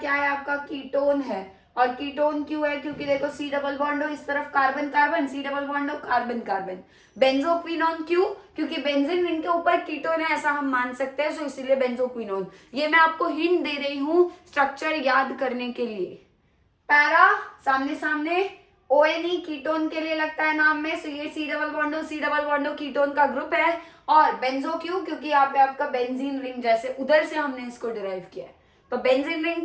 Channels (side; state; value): both; identical; correlation 1.00